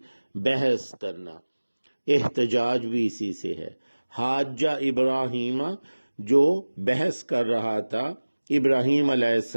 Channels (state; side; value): inverted; both; correlation -1.00